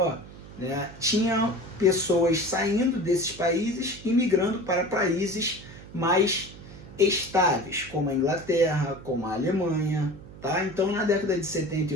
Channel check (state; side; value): noise; right; hum, 17 dB below the sound